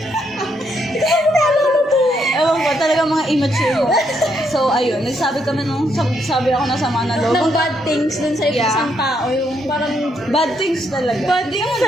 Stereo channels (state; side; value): normal; both; correlation 0.75